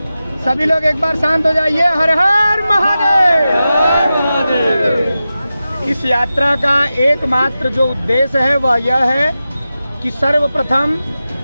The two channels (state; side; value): inverted; both; correlation -0.93